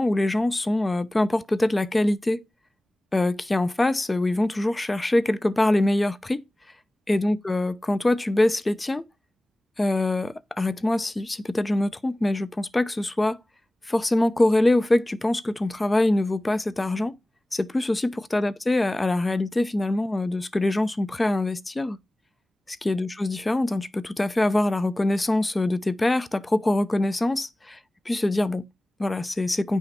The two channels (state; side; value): normal; both; correlation 0.98